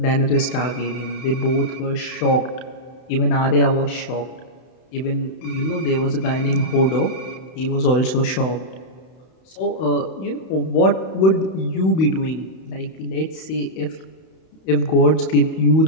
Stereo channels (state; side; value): late; right; 32 ms